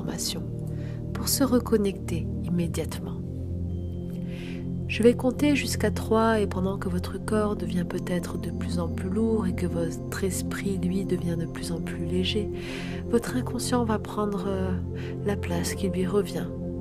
pour se reconnecter immédiatement. Je vais compter jusqu'à 3 et pendant que votre corps devient peut-être de plus en plus lourd et que votre esprit, lui, devient de plus en plus léger, votre inconscient va prendre la place qui lui revient.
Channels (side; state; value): both; identical; correlation 1.00